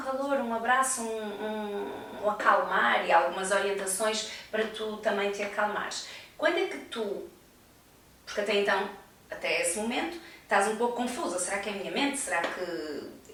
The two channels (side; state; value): both; identical; correlation 1.00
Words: um abraço, um acalmar e algumas orientações para tu também te acalmares. Quando é que tu, porque até então, até esse momento, estás um pouco confusa, será que é a minha mente, será